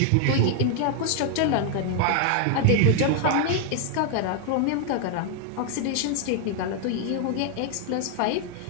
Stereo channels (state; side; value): different; both; correlation 0.00